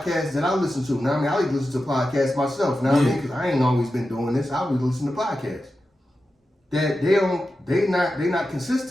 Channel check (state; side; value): normal; both; correlation 0.91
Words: that I listen to. Now I mean, I like to listen to podcasts myself. Now I mean, because I ain't always been doing this. I always listen to podcasts. That they not